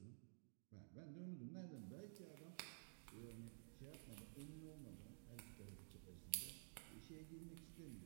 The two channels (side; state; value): left; silent; digital silence